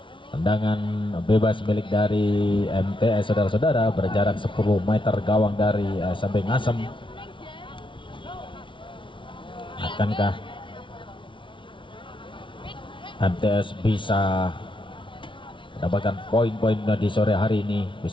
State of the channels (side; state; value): right; late; 0.24 ms